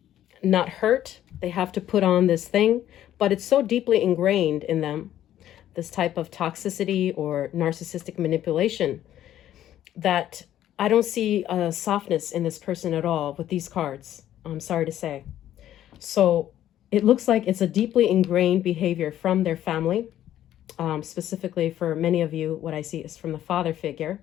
not hurt, they have to put on this thing. But it's so deeply ingrained in them, this type of toxicity or narcissistic manipulation, that I don't see a softness in this person at all with these cards, I'm sorry to say. So it looks like it's a deeply ingrained behavior from their family. Specifically for many of you, what I see is from the father figure.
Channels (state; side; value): quieter; right; 12.0 dB